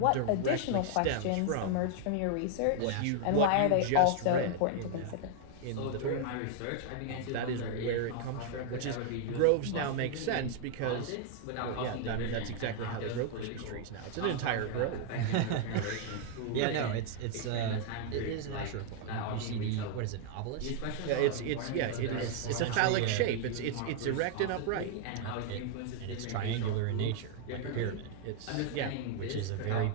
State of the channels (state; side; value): different; both; correlation -0.01